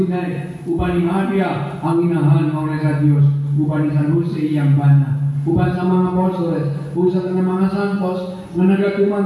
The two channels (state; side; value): identical; both; correlation 1.00